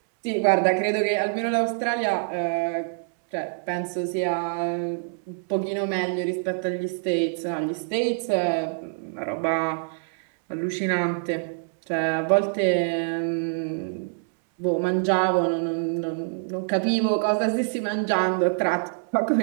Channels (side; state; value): left; silent; 62 dB below the other